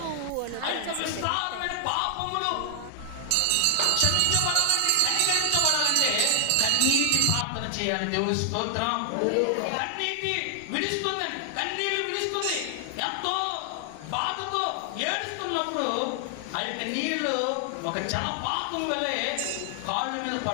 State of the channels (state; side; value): different; both; correlation 0.00